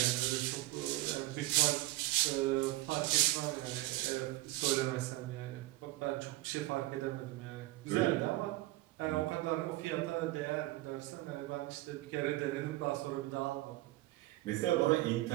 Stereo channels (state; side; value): quieter; left; 17.9 dB